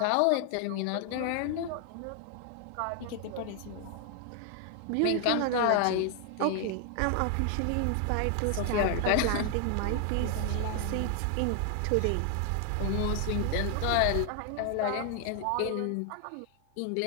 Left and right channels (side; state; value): both; different; correlation 0.00